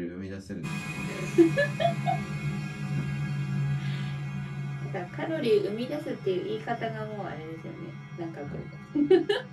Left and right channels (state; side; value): identical; both; correlation 1.00